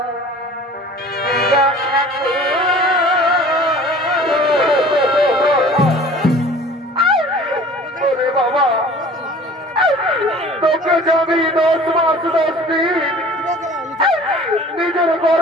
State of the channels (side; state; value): both; normal; correlation 0.46